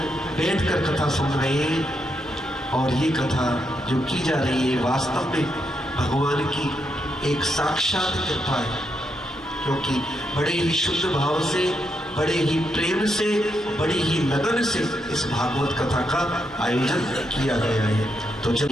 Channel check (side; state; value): both; normal; correlation 0.81